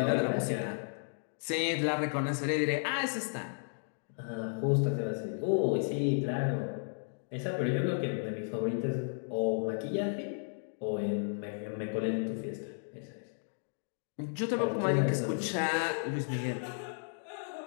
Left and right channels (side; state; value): right; silent; digital silence